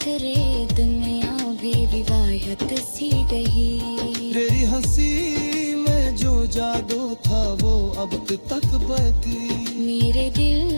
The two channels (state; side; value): inverted; both; correlation -1.00